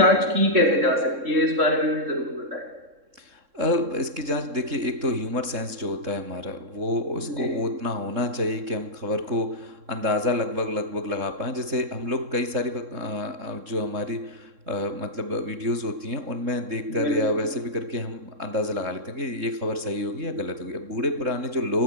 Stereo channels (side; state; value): left; late; 3.7 ms